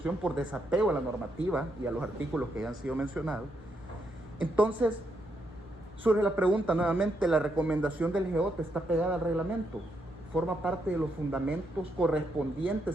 por desapego a la normativa y a los artículos que ya han sido mencionados. Entonces, surge la pregunta nuevamente, ¿la recomendación del GEOT está pegada al reglamento? ¿Forma parte de los fundamentos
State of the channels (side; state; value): both; normal; correlation 0.78